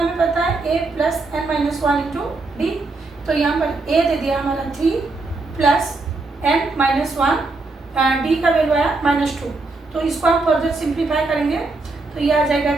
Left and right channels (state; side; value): quieter; left; 3.4 dB